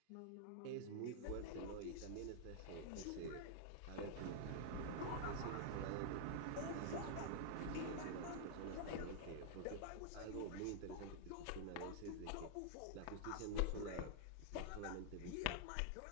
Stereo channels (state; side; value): different; both; correlation -0.01